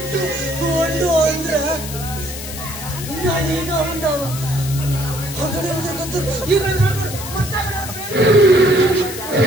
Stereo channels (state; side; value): noise; left; hiss, 10 dB below the sound